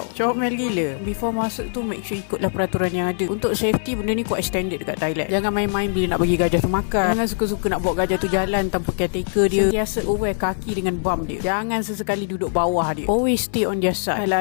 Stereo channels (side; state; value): right; silent; digital silence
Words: Comel gila. Before masuk tu, make sure ikutlah peraturan yang ada. Untuk safety, benda ni quite standard dekat Thailand. Jangan main-main bila nak bagi gajah tu makan. Jangan suka-suka nak bawa gajah tu jalan tanpa caretaker dia. Sentiasa aware kaki dengan bum dia. Jangan sesekali duduk bawah dia. Always stay on their side.